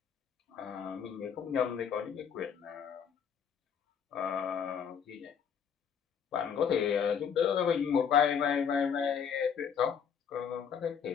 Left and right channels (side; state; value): right; quieter; 7.4 dB